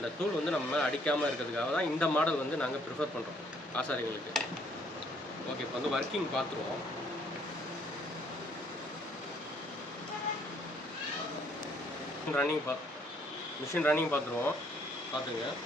தூள் வந்து நம்ம மேலே அடிக்காமல் இருக்கிறதுக்காக தான் இந்த மாடல் வந்து நாங்கள் ப்ரிஃபர் பண்ணுறோம் ஆசாரிங்களுக்கு. ஓகே, இப்போ வந்து ஒர்க்கிங் பார்த்துருவோம். மிஷின் ரன்னிங் பார்த்துருவோம். பார்த்துங்க,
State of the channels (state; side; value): normal; both; correlation 0.65